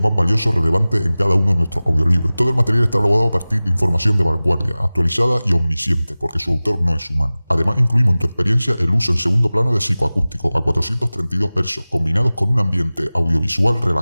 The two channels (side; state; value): both; inverted; correlation -0.98